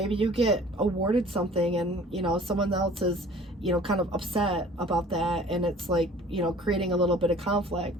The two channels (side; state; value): both; normal; correlation 0.49